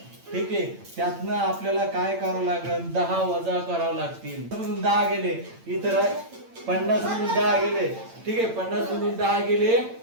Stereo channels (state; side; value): late; left; 8.8 ms